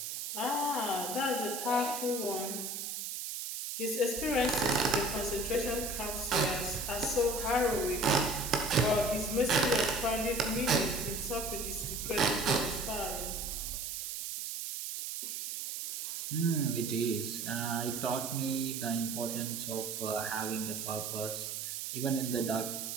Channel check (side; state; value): right; noise; hiss, 5 dB below the sound